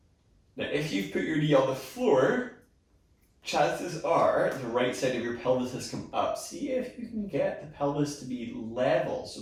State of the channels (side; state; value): both; identical; correlation 1.00